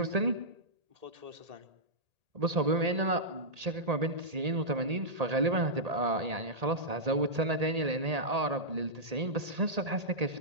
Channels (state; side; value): late; left; 1.8 ms